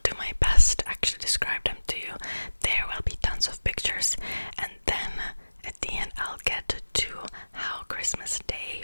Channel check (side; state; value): both; inverted; correlation -1.00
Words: do my best to actually describe them to you. There will be tons of pictures, and then at the end I'll get to how Christmas Day